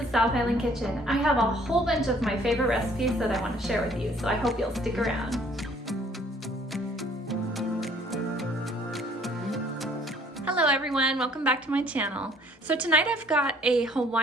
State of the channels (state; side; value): normal; both; correlation 0.58